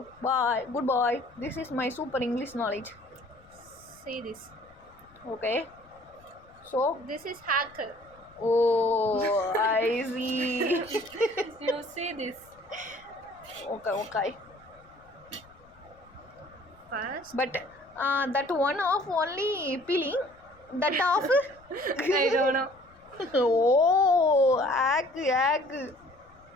Bye. Goodbye. This is my super English knowledge. See this. Okay. So. This is hacker. Oh, I see. You see this. Okay. First. But that one off only peeling. That off. I don't know. Oh, hack.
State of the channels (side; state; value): left; noise; rumble, 28 dB below the sound